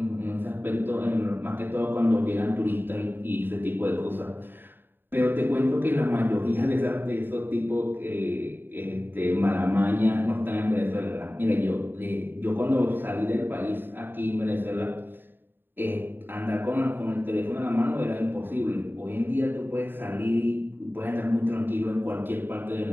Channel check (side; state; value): left; late; 0.095 ms